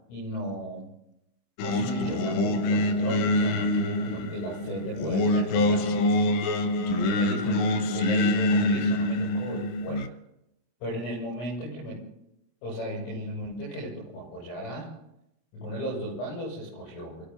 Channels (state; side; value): late; right; 26 ms